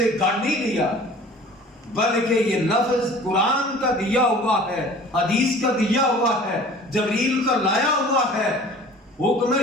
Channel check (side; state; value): both; normal; correlation 0.46